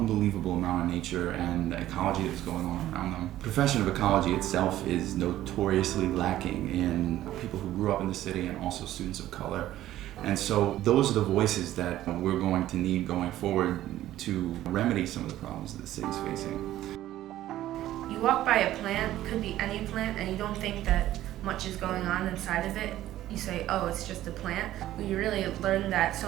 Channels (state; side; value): quieter; left; 13.8 dB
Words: amount of nature and the ecology that's going on around them. The profession of ecology itself is notoriously lacking in people who grew up in the city and also students of color. And so those are the voices that we're going to need going forward to remedy some of the problems that the city's facing. You walk by a plant, could be any plant, and you don't think that much is going on inside of it. You say, oh, it's just a plant. We really learned that